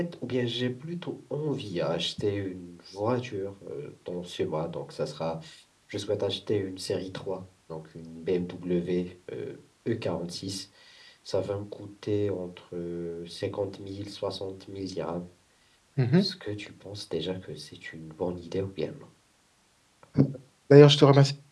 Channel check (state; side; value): identical; both; correlation 1.00